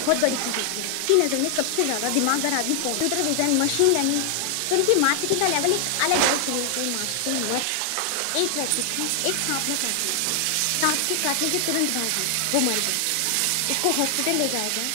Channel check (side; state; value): both; different; correlation 0.00